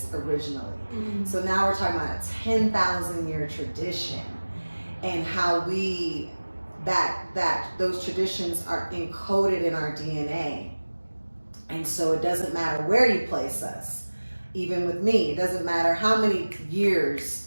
originally. So now we're talking about a 10,000 year tradition, and how that those traditions are encoded in our DNA. And so it doesn't matter where you place us. Even with me, it doesn't matter how many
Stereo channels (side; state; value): both; inverted; correlation -1.00